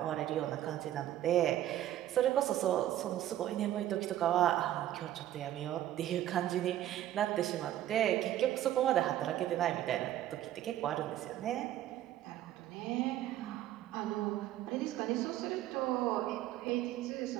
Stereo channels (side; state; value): left; quieter; 12.9 dB